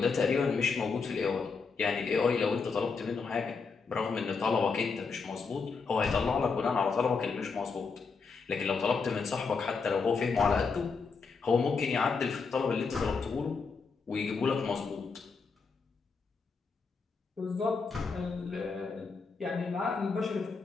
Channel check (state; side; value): quieter; right; 4.9 dB